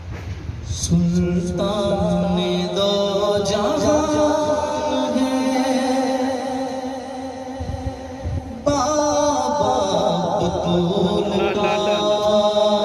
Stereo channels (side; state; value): both; identical; correlation 1.00